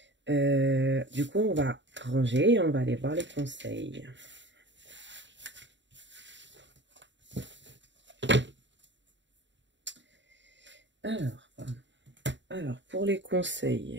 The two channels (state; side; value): late; left; 0.53 ms